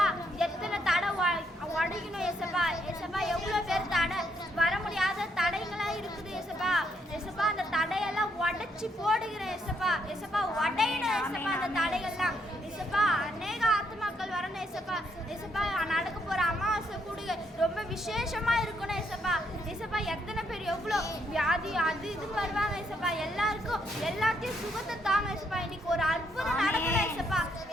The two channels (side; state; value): both; normal; correlation 0.74